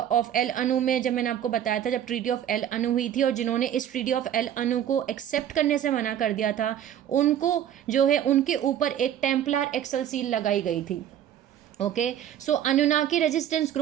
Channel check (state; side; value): quieter; left; 10.4 dB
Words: एल अनु में, जब मैंने आपको बताया था जब ट्रीटी ऑफ एल अनु हुई थी और जिन्होंने इस ट्रीटी ऑफ एल अनु को एक्सेप्ट करने से मना कर दिया था, उनको जो है उनके ऊपर एक टेम्पलर एक्सल सील लगाई गई थी। ओके अनुनाकी रेजिस्टेंस